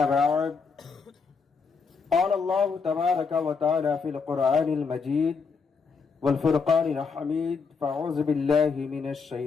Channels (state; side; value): quieter; right; 5.1 dB